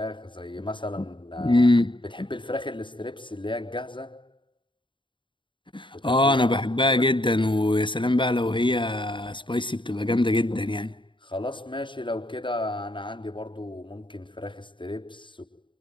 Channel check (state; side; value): late; right; 0.24 ms